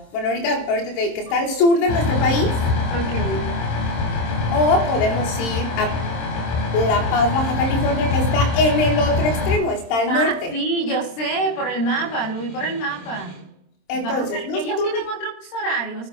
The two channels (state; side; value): late; right; 26 ms